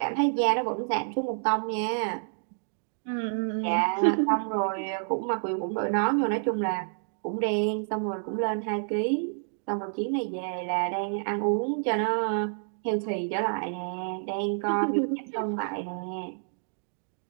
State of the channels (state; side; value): silent; left; digital silence